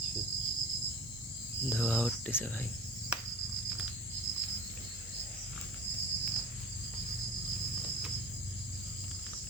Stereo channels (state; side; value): normal; both; correlation 0.36